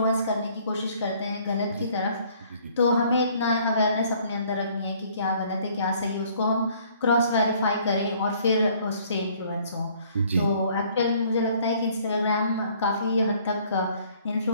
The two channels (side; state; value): both; inverted; correlation -0.59